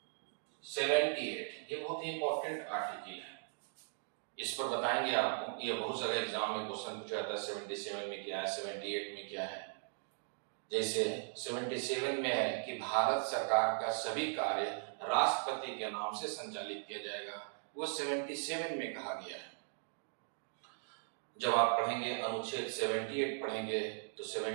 78, ये बहुत ही इंपॉर्टेंट आर्टिकल है। इस पर बताएंगे आपको। ये बहुत सारे एग्जाम में क्वेश्चन पूछा जाता है, 77 में क्या है, 78 में क्या है। जैसे 77 में है कि भारत सरकार का सभी कार्य राष्ट्रपति के नाम से संचालित किया जाएगा, वो 77 में कहा गया है। जब आप पढ़ेंगे अनुच्छेद 78 पढ़ेंगे तो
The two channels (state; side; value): silent; left; digital silence